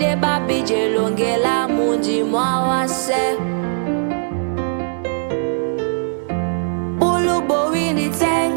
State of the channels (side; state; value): left; silent; digital silence